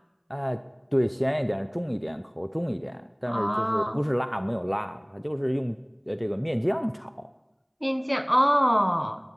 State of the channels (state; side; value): identical; both; correlation 1.00